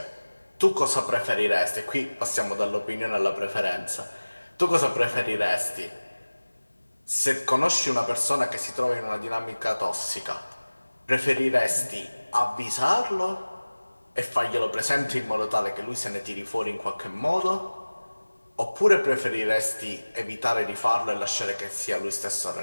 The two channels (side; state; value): both; inverted; correlation -1.00